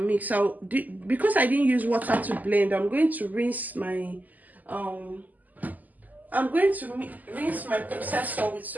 Because I didn't use water to blend, I'm going to rinse my rinse my processor with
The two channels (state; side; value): late; left; 0.081 ms